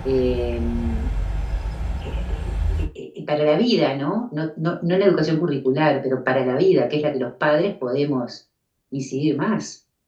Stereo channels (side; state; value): both; identical; correlation 1.00